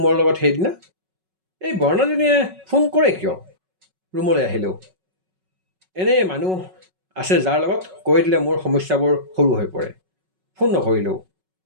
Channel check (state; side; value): late; left; 5.4 ms